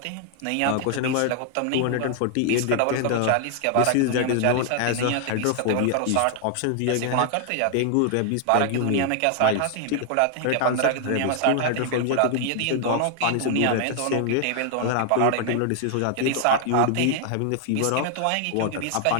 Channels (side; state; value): both; different; correlation 0.00